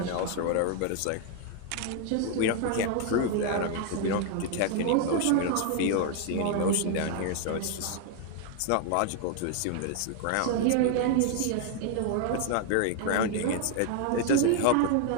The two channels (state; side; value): different; both; correlation 0.00